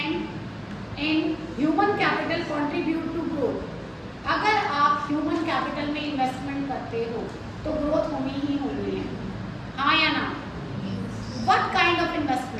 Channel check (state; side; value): identical; both; correlation 1.00